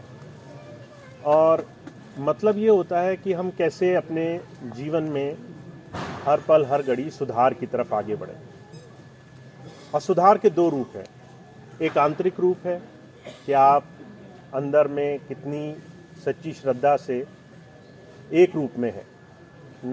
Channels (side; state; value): both; identical; correlation 1.00